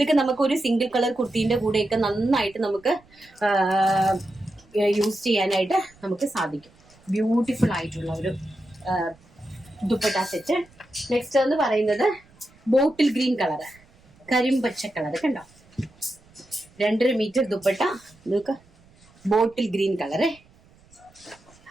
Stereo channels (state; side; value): noise; right; rumble, 29 dB below the sound